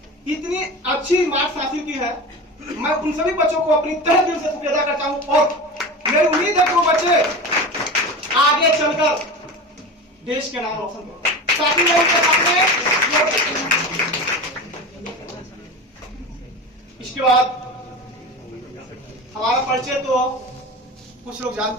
इतनी अच्छी मार्क्स हासिल की है। मैं उन सभी बच्चों को अपनी तहे दिल से शुक्रिया अदा करता हूं और मेरी उम्मीद है कि वो बच्चे आगे चलकर देश के नाम रोशन करें ताकि मैं उनके सामने। इसके बाद हमारा परिचय तो कुछ लोग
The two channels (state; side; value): normal; both; correlation 0.28